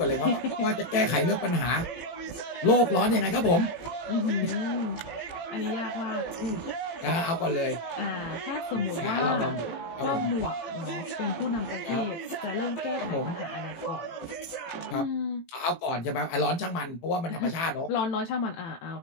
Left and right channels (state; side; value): late; right; 18 ms